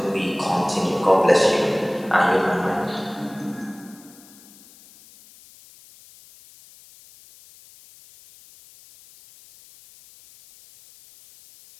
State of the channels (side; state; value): left; noise; hiss, 24 dB below the sound